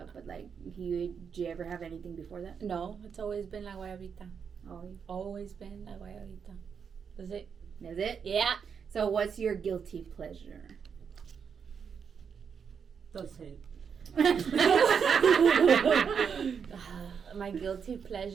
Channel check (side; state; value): left; quieter; 6.7 dB